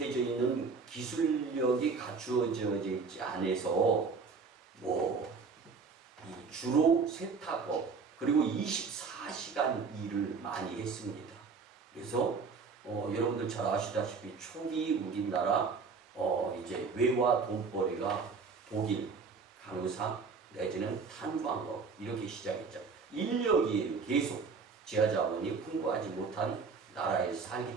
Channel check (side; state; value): left; quieter; 4.9 dB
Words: 있는 기술력이 갖추어져 있지 않아서 주로 세탁업 그리고 24시간 일을 많이 했습니다. 그래서 여러분들 잘 아시다시피 초기 우리나라 이제 외화 돈벌이가 독일, 간호사 내지는 탄광업 이렇게 시작했죠. 인력이에요. 계속 지하자원이 풍부하지 못한 나라에서